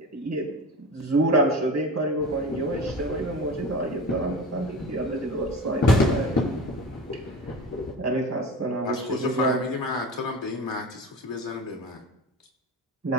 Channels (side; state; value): both; normal; correlation 0.31